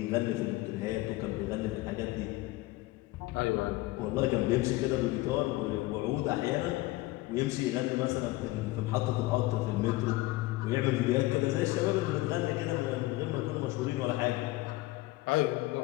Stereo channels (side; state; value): right; quieter; 19.2 dB